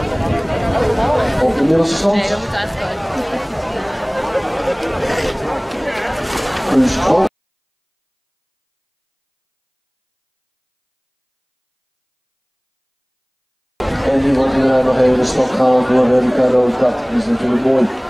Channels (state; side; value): identical; both; correlation 1.00